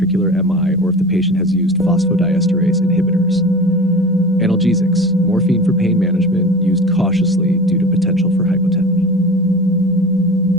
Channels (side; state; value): both; normal; correlation 0.34